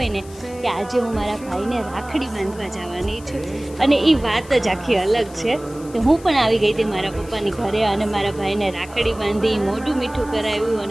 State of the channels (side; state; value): left; noise; hiss, 21 dB below the sound